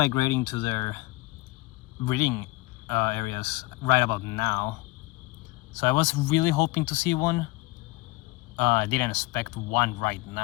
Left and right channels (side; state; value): right; quieter; 21.2 dB